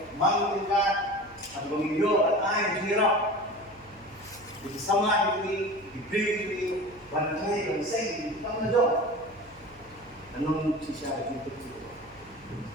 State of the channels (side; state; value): right; noise; hum, 25 dB below the sound